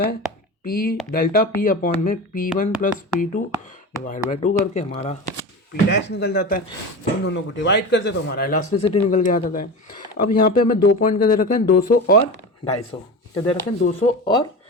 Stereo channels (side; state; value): both; normal; correlation 0.27